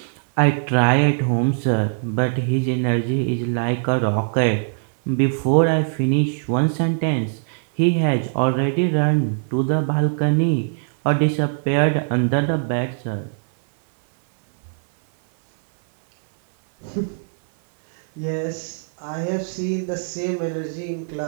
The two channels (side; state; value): left; silent; 59 dB below the other